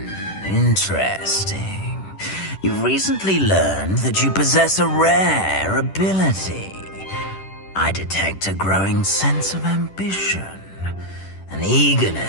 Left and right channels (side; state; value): right; late; 10 ms